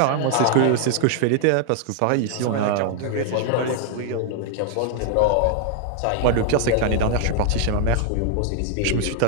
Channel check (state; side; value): different; both; correlation 0.00